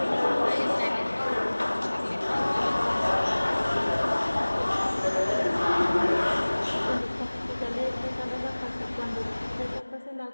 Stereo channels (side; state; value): both; inverted; correlation -1.00